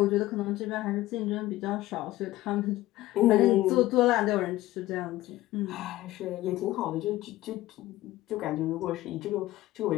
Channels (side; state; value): right; quieter; 16.5 dB